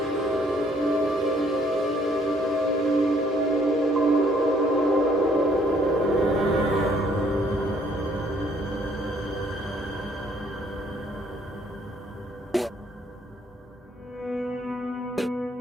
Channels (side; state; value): both; normal; correlation 0.64